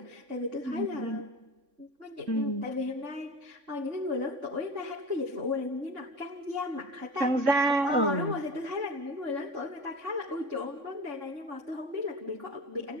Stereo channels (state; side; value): late; left; 3.5 ms